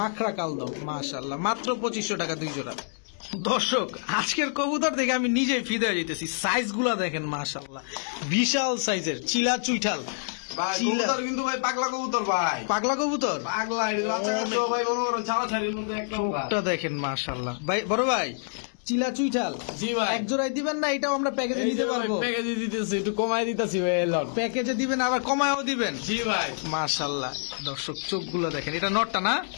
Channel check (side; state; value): right; silent; digital silence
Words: কালদম। মাশাআল্লাহ, মাত্র 2500 টাকা দুই জোড়া। দর্শক আজকের কবুতর দেখে আমি নিজেই ফিদে হয়ে যেতেছি। সাইজ গুলা দেখেন মাশাআল্লাহ, বিশাল সাইজের চিলা চুইঠাল। ভাই চিলা। কবুতর কিন্তু ভাই পাগলা কবুতর ভাই। পাগলা কবুতর? পাগলা এটা বাচ্চা কাচ্চা ভাই মনে করো ছাড়াছাড়ির মধ্যে একদম ভাই। চোখটা দেখেন মাশাআল্লাহ। ভাই বড় ভাই, চিলা চুইঠাল জি ভাই। এক জোড়ায় দিবেন না? এটাও আমরা প্যাকেজে নিতে পারবো? প্যাকেজে দিতেছি, একটু কমাই দিতেছি ভাই। এলাম প্যাকেজে দিবেন আবার কমায়ও দিবেন? জি ভাই। মাশাআল্লাহ। দর্শক চোখগুলো দেখেন, এটা নটটা না?